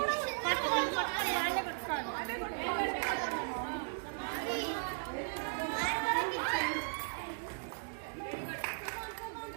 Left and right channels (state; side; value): silent; left; digital silence